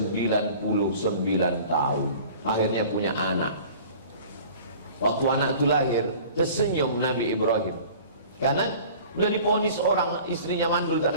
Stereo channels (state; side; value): inverted; both; correlation -0.45